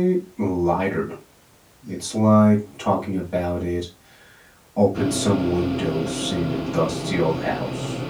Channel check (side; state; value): both; identical; correlation 1.00